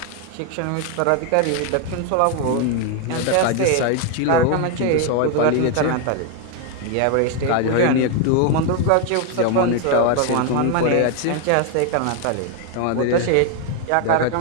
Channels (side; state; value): both; different; correlation 0.01